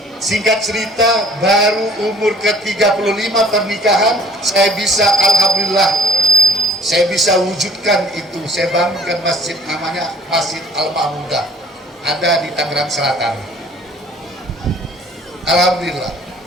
Singkat cerita, baru umur ke-35 pernikahan, saya bisa, alhamdulillah, saya bisa wujudkan itu. Saya bangunkan masjid, namanya Masjid Al-Mahmudah, ada di Tangerang Selatan. Alhamdulillah.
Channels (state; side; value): normal; both; correlation 0.50